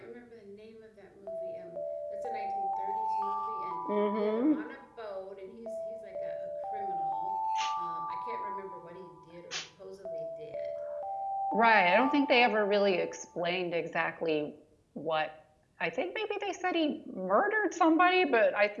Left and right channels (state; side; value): identical; both; correlation 1.00